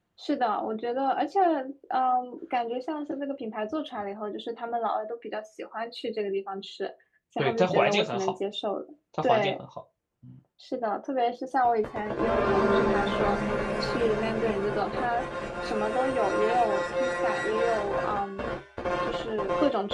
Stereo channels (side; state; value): both; identical; correlation 1.00